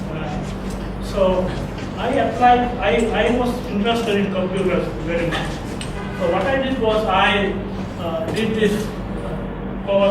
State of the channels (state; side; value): identical; both; correlation 1.00